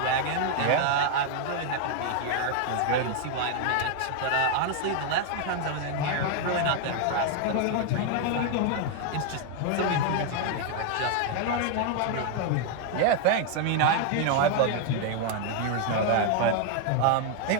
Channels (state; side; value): different; both; correlation 0.00